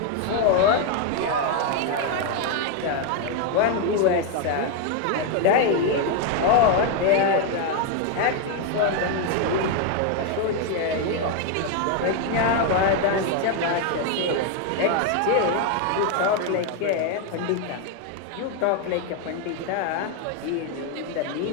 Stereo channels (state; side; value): different; both; correlation 0.01